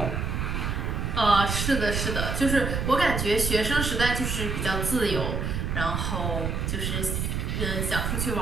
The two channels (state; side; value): noise; right; rumble, 1 dB below the sound